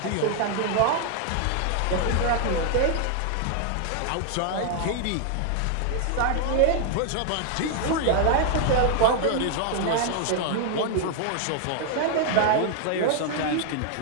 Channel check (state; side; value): different; both; correlation 0.00